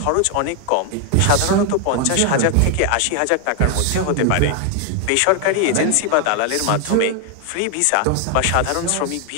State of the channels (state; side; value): different; both; correlation 0.01